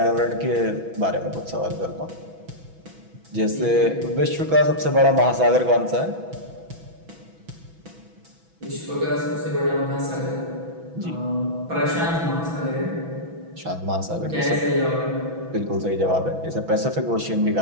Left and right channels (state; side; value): late; left; 6.1 ms